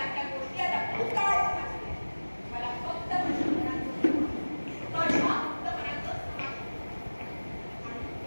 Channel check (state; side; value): inverted; both; correlation -1.00